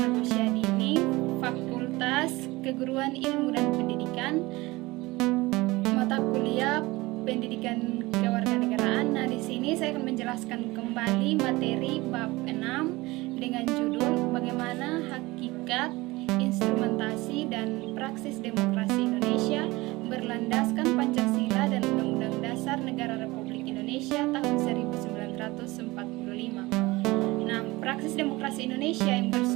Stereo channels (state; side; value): quieter; left; 21.1 dB